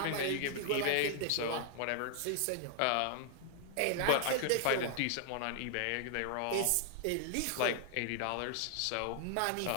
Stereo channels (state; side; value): different; both; correlation 0.00